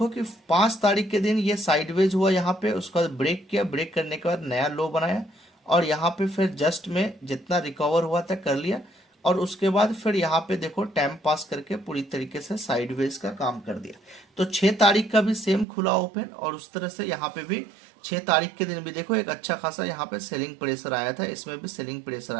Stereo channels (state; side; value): drops out; left; at 15.7 s